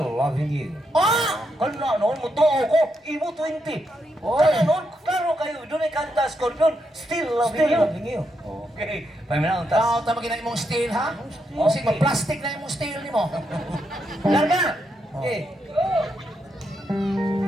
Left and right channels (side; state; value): both; normal; correlation 0.81